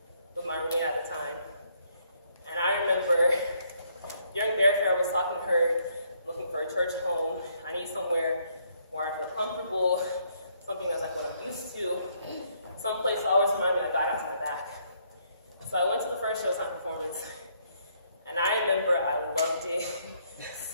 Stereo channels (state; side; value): inverted; both; correlation -0.70